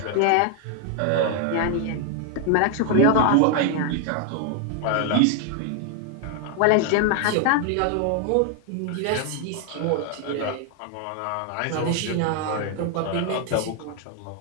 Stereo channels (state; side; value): different; both; correlation 0.00